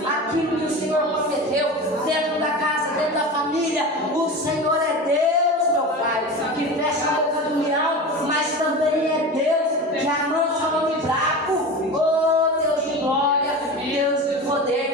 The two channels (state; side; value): normal; both; correlation 0.29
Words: àquilo que o Senhor prometeu dentro da casa, dentro da família. O Senhor é Deus, meu Pai, que fecha a boca do leão, mas também é Deus que amansa o homem fraco. Oh, Deus de glória, Deus de